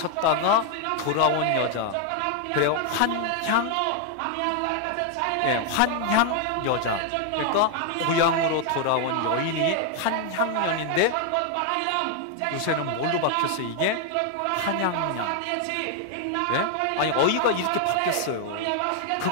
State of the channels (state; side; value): different; both; correlation 0.00